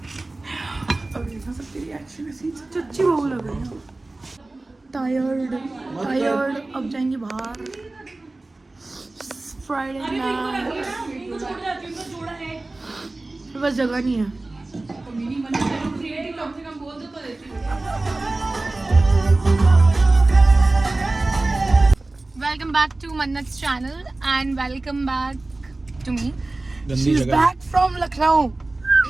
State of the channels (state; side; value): quieter; left; 3.0 dB